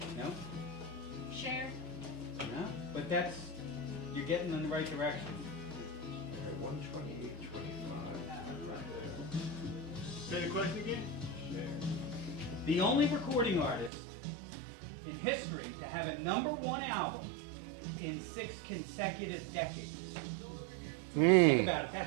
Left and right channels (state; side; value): drops out; left; at 13.9 s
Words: no, Share. no. But you're getting in the right direction. 128.25. Say the question again? The only recording artist in history to have a #1 album in 6 consecutive decades. Think about it.